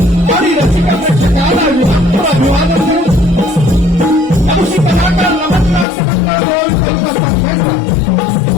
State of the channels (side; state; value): right; drops out; at 5.9 s